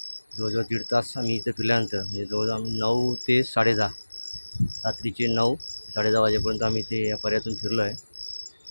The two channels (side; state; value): both; inverted; correlation -1.00